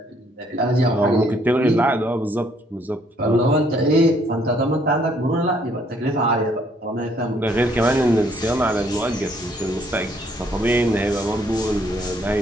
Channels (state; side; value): normal; both; correlation 0.66